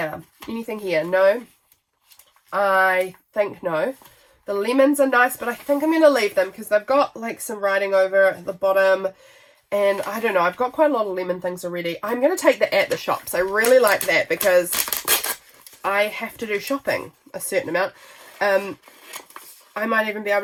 anything here? No. I think no. The lemons are nice, but I think I'm going to leave them because they've got like some writing over at the bottom. And I don't know, I've got quite a lot of lemon things already. I'm going to take the at the shops. I really like that because I have to do shopping a certain amount. I might even be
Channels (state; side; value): identical; both; correlation 1.00